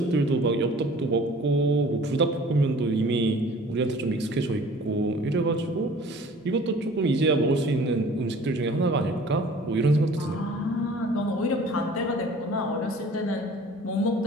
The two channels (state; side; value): normal; both; correlation 0.48